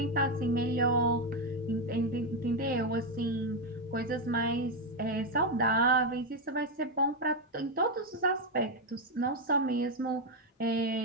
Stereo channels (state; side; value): normal; both; correlation 0.04